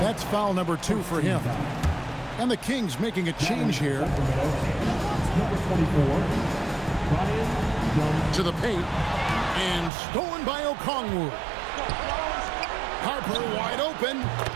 That's foul number 2 for him. And the Kings making a change here. To the paint. And stolen by Okongwu. Harper wide open.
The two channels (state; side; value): drops out; left; at 9.9 s